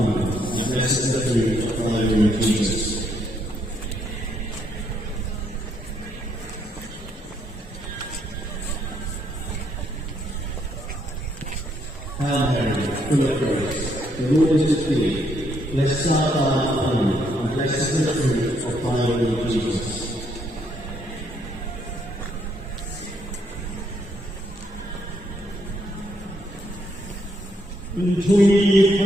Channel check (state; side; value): normal; both; correlation 0.73